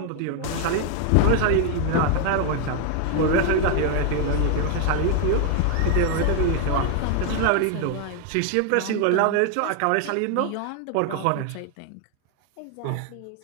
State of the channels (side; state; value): both; different; correlation 0.00